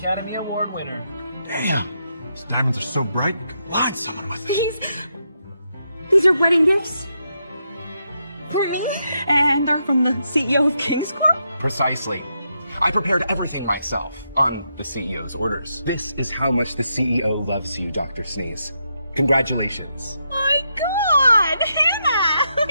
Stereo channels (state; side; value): inverted; both; correlation -0.81